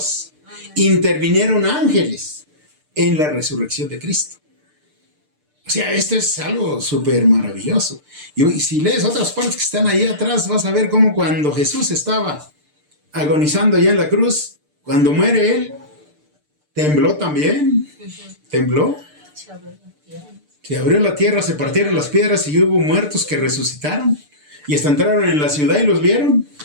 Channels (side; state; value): left; late; 6.7 ms